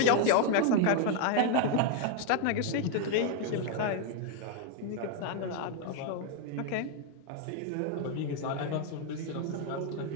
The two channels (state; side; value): different; both; correlation 0.00